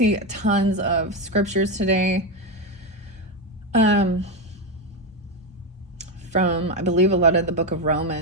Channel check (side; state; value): both; normal; correlation 0.10